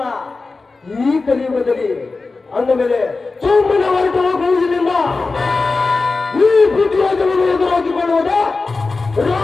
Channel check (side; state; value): right; quieter; 3.9 dB